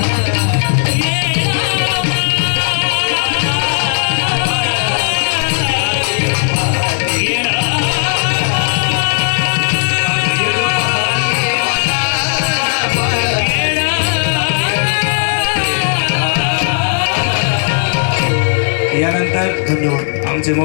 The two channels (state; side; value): silent; right; digital silence